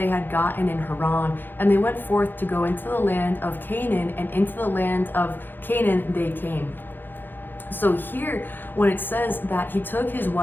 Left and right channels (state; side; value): late; right; 0.094 ms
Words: had gotten in Haran, and they went forth to go into the land of Canaan, and into the land of Canaan they came. So here, when it says that he took his